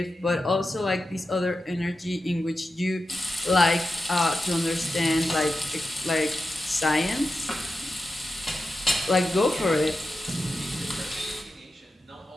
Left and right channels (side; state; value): both; normal; correlation 0.91